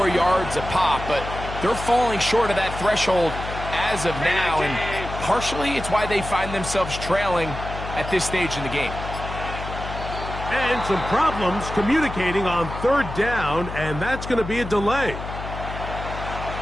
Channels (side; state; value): left; noise; hum, 8 dB below the sound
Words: yards a pop, but they're falling short of that threshold as of now, and partially it's why they find themselves trailing at this stage in the game. And some problems communicating on 3rd down, and that's going to be a delay.